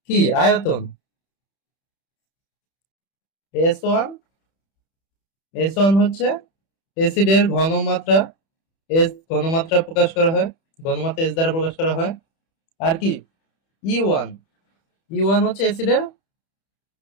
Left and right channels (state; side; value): late; right; 31 ms